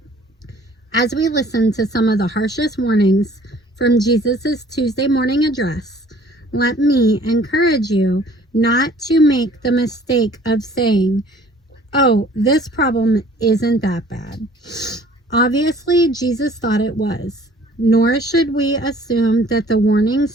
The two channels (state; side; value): normal; both; correlation 0.53